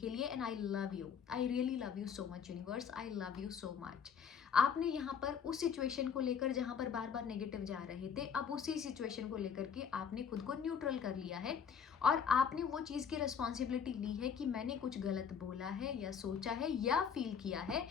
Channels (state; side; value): quieter; right; 7.1 dB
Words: लिए, and I love you, I really love you so much universe, I love you so much. आपने यहाँ पर उस सिचुएशन को लेकर जहाँ पर बार बार नेगेटिव जा रहे थे, अब उसी सिचुएशन को लेकर के आपने खुद को न्यूट्रल कर लिया है और आपने वो चीज़ की रिस्पॉन्सिबिलिटी ली है कि मैंने कुछ गलत बोला है या सोचा है या फील किया है,